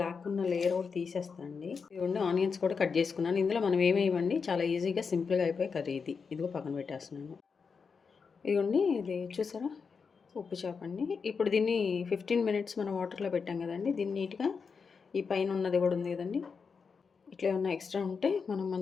ఉన్న లేయర్ కూడా తీసేస్తానండి. ఇదిగోండి ఆనియన్స్ కూడా కట్ చేసుకున్నాను. ఇందులో మనం ఏమేయండి, చాలా ఈజీగా సింపుల్గా అయిపోయి కర్రీ ఇది. ఇదిగో పక్కన పెట్టేస్తున్నాను. ఇదిగోండి ఇది చూసారా, ఉప్పు చేప అండి. ఇప్పుడు దీన్ని 15 మినిట్స్ మనం వాటర్లో పెట్టాం కదండి. దీన్ని నీట్గా ఈ పైన ఉన్నది కూడా ఉంది కదండి, ఇట్లా ఏమన్నా ఎక్స్ట్రా ఉంటే మనం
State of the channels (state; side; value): quieter; right; 5.5 dB